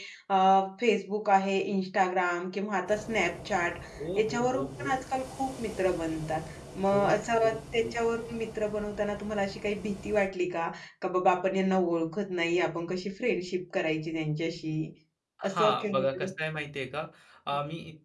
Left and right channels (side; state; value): both; identical; correlation 1.00